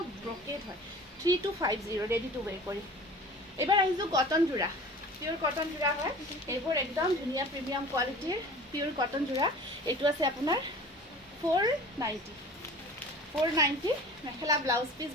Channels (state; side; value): normal; both; correlation 0.42